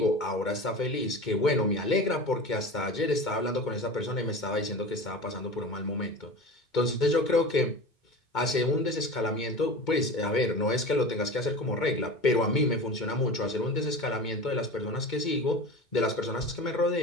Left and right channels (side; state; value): right; late; 2.2 ms